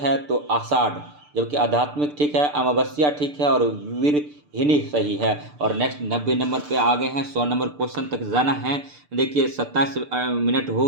तो आषाढ़, जबकि आध्यात्मिक ठीक है, अमावस्या ठीक है और वीरहिनी सही है। और नेक्स्ट 90 नंबर पे आ गए हैं, 100 नंबर क्वेश्चन तक जाना है। देखिए 27 मिनट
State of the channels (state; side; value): late; left; 6.8 ms